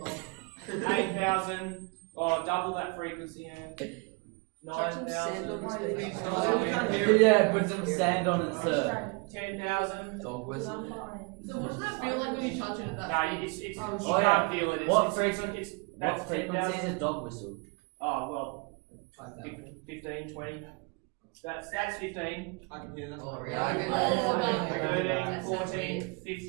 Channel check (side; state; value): left; quieter; 30.9 dB